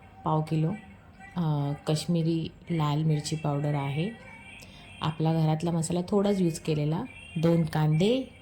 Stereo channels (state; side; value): identical; both; correlation 1.00